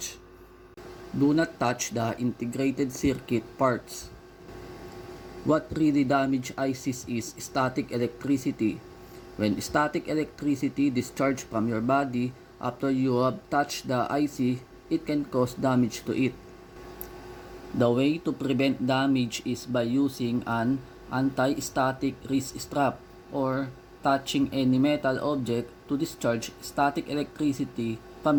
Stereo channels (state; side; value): identical; both; correlation 1.00